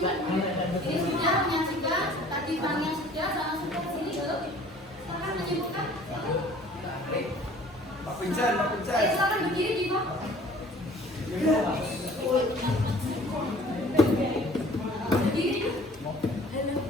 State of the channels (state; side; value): normal; both; correlation 0.51